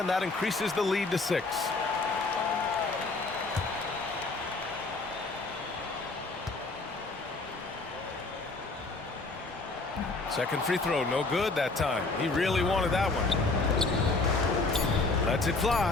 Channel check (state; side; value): quieter; right; 3.5 dB